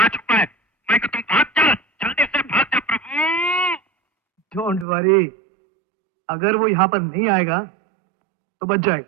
छुपा है। मैं कि तुम भाग जा, जल्दी से भाग जा प्रभु। डोंट वरी, अगर वो यहाँ पर नहीं आएगा तो बच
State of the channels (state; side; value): drops out; left; at 4.9 s